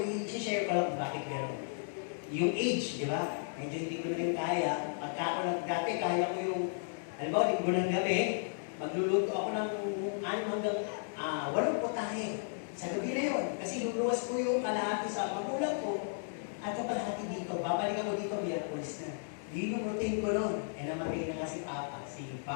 i-share ko lang bakit gano'n. Yung age, di ba? Medyo hindi ko na rin kaya. Pagka ako dati, kaya ko yung, halimbawa, linggo ng gabi, magluluto ako ng 6 hanggang 8 putahe. Sa gabi na yun. Kasi luluwas ko yung kalahati sa magulang ko. At kalahati dito. Babalik ako dito, Miyerkules na. Yun yung routine ko nun. Namatay na nga si Papa, si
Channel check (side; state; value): right; silent; digital silence